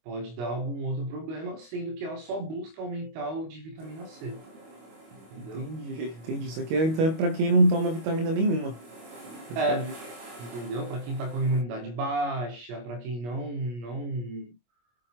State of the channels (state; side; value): late; left; 25 ms